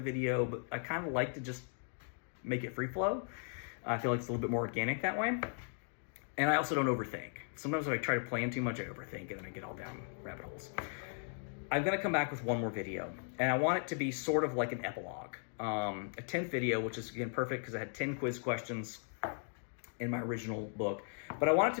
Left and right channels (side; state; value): right; silent; 53 dB below the other